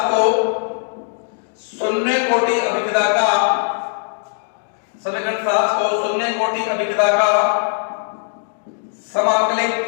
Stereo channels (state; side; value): silent; right; digital silence